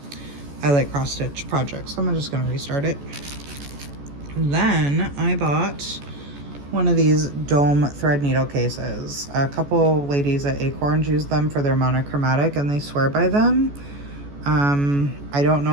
I Like Cross Stitch project, so I'm just gonna restart it. Then I bought one of these dome thread needle cases. A couple ladies at Acorns use them for their monochromatic and they swear by them. I don't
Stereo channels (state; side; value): late; left; 14 ms